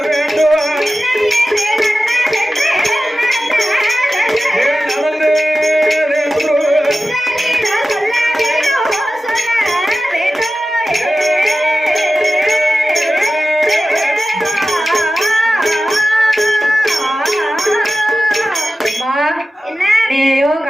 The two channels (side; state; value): both; normal; correlation 0.94